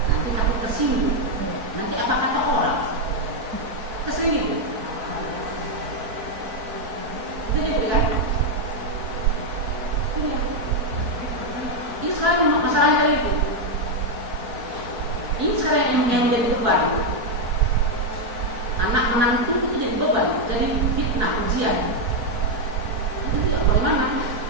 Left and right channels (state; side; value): late; left; 4.7 ms